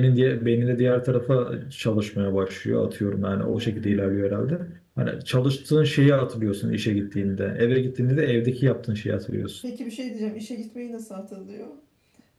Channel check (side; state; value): both; identical; correlation 1.00